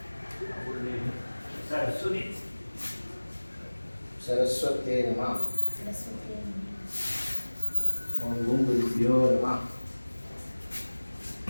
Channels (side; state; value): both; inverted; correlation -1.00